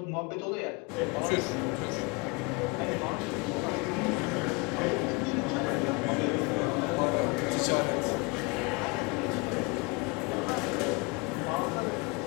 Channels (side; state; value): right; quieter; 28.0 dB